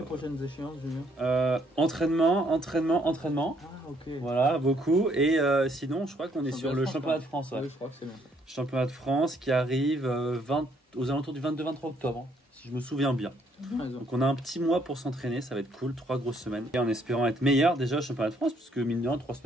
prochaines échéances, Julien? Entraînement. Ah, ok. Voilà, beaucoup. Et sinon, je crois qu'on est sur le championnat de France. Oui, je crois que c'est bien. Championnat de France qui arrive aux alentours du 22-23 octobre, si je me souviens bien. Donc on a un petit mois pour s'entraîner, ça va être cool, 3 grosses semaines. Et en espérant être meilleur déjà au championnat de France, parce que mine de rien, 3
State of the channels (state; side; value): normal; both; correlation 0.68